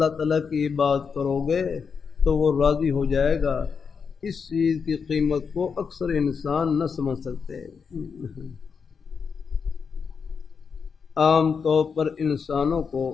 تعالیٰ کی عبادت کرو گے تو وہ راضی ہو جائے گا، اس چیز کی قیمت کو اکثر انسان نہ سمجھ سکتے. عام طور پر انسانوں کو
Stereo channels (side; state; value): right; quieter; 5.9 dB